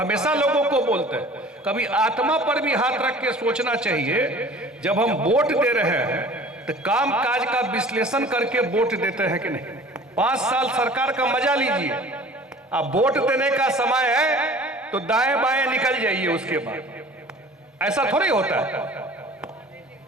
लोगों को बोलते हैं, कभी आत्मा पर भी हाथ रख के सोचना चाहिए। जब हम वोट दे रहे हैं तो काम काज का विश्लेषण करके वोट देते हैं कि नहीं। 5 साल सरकार का मजा लीजिए, अब वोट देने का समय है तो दाएं बाएं निकल जाइए उसके बाद। ऐसा थोड़ी होता है,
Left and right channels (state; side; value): normal; both; correlation 0.46